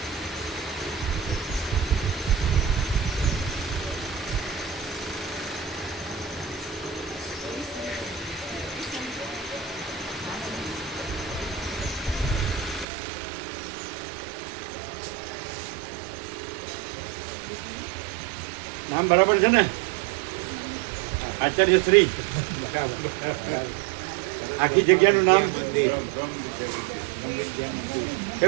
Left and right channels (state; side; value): drops out; left; at 12.9 s